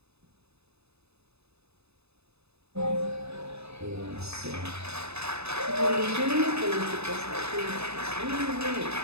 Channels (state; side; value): late; left; 0.79 ms